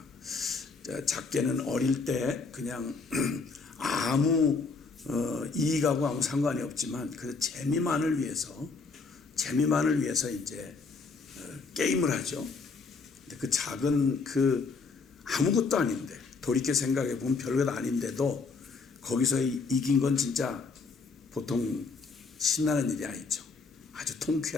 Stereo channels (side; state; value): right; quieter; 4.4 dB